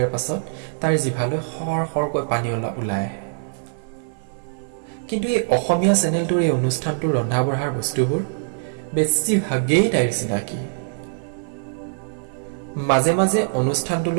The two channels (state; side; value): silent; left; 58 dB below the other